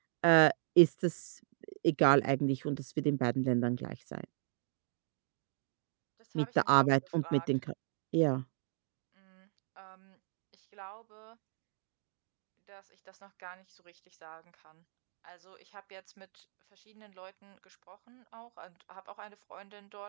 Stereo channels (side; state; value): left; silent; digital silence